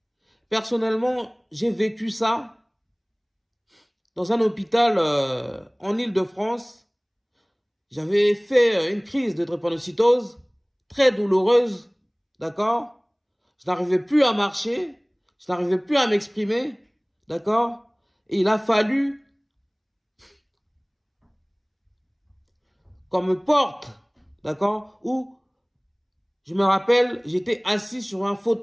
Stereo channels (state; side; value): identical; both; correlation 1.00